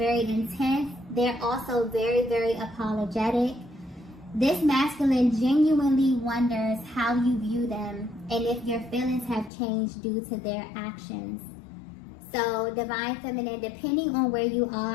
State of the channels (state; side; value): drops out; right; at 9.5 s